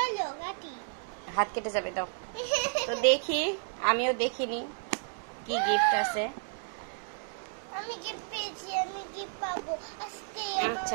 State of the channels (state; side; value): silent; left; digital silence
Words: কাটি। হাত কেটে যাবে, দাও। তো দেখি, আমিও দেখিনি কি গিফট আছে। আমি গিফট পেয়েছি, আমি গিফট পাবো আজকে। আচ্ছা